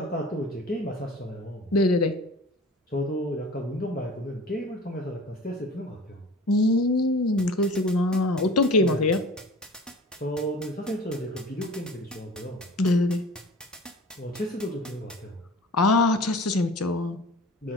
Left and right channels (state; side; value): normal; both; correlation 0.41